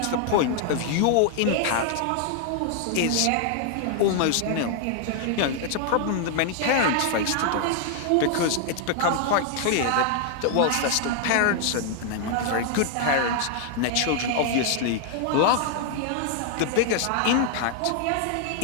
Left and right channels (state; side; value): different; both; correlation 0.00